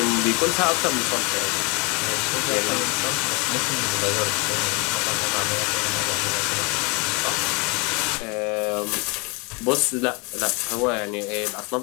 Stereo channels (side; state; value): right; quieter; 30.1 dB